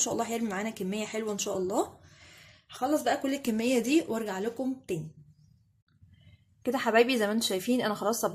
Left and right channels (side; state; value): both; identical; correlation 1.00